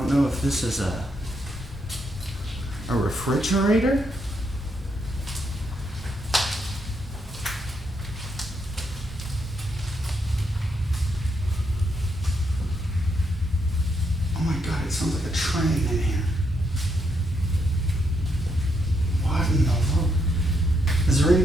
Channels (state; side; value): normal; both; correlation 0.78